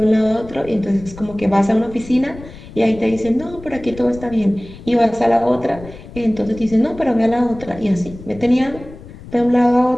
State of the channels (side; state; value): left; noise; rumble, 17 dB below the sound